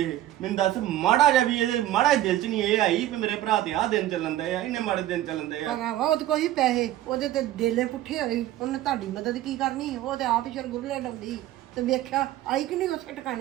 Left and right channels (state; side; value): quieter; left; 13.9 dB